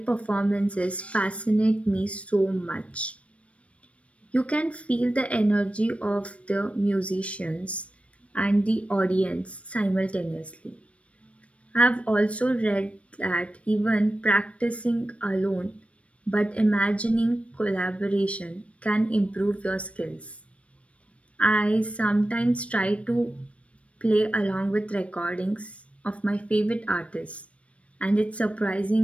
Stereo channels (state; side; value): late; right; 0.063 ms